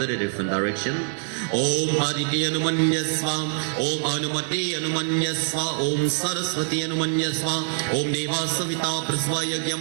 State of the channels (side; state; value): left; silent; digital silence